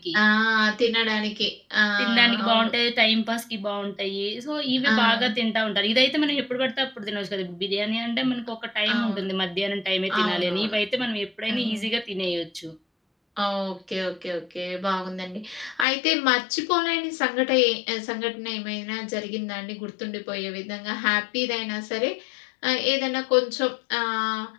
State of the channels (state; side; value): drops out; right; at 15.9 s